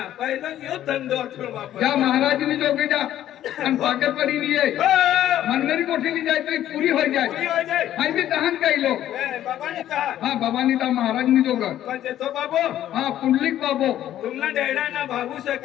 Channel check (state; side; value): quieter; right; 12.1 dB